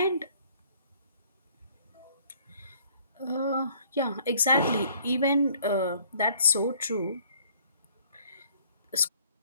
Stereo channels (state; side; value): inverted; both; correlation -0.58